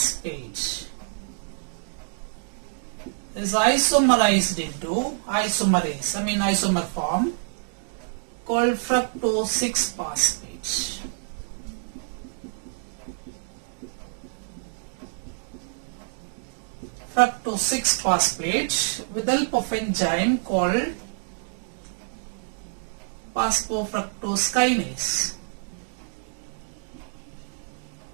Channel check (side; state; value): left; silent; digital silence